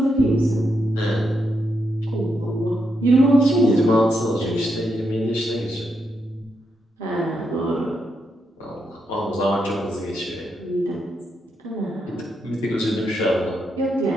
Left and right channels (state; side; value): normal; both; correlation 0.81